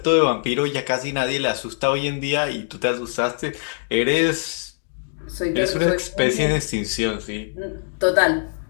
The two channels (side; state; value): right; silent; digital silence